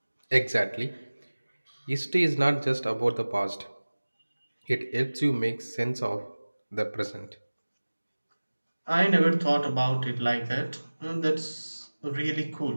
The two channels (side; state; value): both; inverted; correlation -1.00